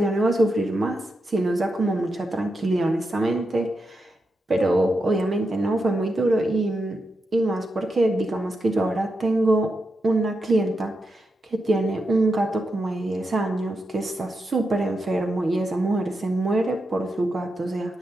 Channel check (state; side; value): normal; both; correlation 0.86